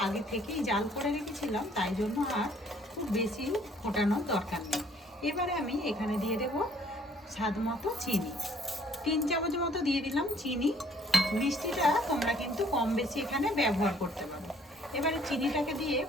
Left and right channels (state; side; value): normal; both; correlation 0.61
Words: আগে থেকেই জাল করে রেখেছিলাম, তাই জন্য আর খুব বেশি ফোটানোর দরকার নেই। এবারে আমি এখানে দিয়ে দেব স্বাদ মতো চিনি। 3 চামচ মতো দিয়ে দিলাম চিনি। মিষ্টিটা তোমরা কিন্তু কম বেশি এখানে ব্যবহার করতে পারো। এবারে চিনিটাকে দিয়ে